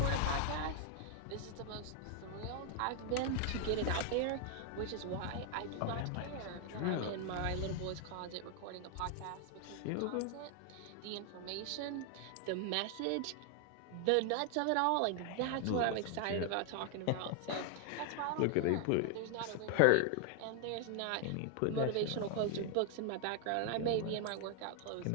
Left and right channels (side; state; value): both; different; correlation 0.00